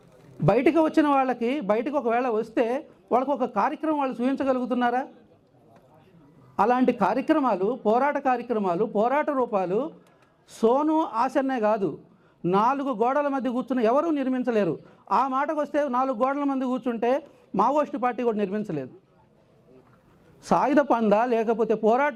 బయటకు వచ్చిన వాళ్ళకి, బయటకు ఒకవేళ వస్తే వాళ్ళకు ఒక కార్యక్రమం వాళ్ళు చూపించగలుగుతున్నారా? అలాంటి కార్యక్రమాలు, పోరాట రూపాలు సోను ఆసన్నే కాదు, 4 గోడల మధ్య కూర్చుని ఎవరూ నిర్మించలేరు. ఆ మాటకు వస్తే 4 గోడల మధ్య కూర్చుంటే మావోయిస్టు పార్టీ కూడా నిర్మించలేదు. సాయుధ పందా లేకపోతే పోరాట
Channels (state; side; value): identical; both; correlation 1.00